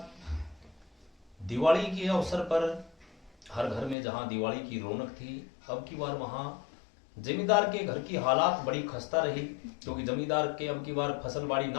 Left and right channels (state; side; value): drops out; right; at 4.0 s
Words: दिवाली के अवसर पर हर घर में जहां दिवाली की रौनक थी, अब की बार वहां जमींदार के घर की हालात बड़ी खस्ता रही, क्योंकि जमींदार के अब की बार फसल बाड़ी